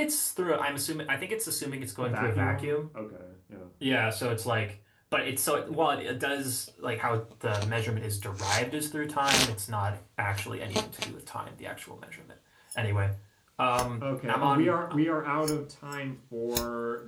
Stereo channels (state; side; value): identical; both; correlation 1.00